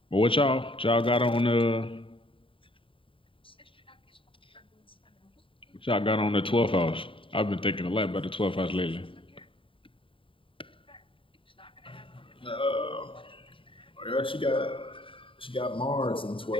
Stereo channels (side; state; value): right; late; 0.25 ms